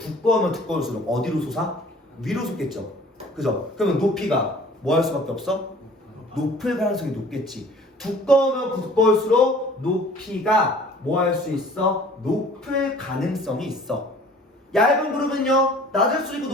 두꺼울수록 어디로 솟아? 위로 솟겠죠. 그죠? 그러면 높이가 뭐 할 수밖에 없어? 높을 가능성이 높겠지. 두꺼우면 두꺼울수록 높이가 뭐 할 수 있어? 높을 가능성이 있어. 얇은 구름은요 낮을 수 있고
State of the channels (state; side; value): normal; both; correlation 0.50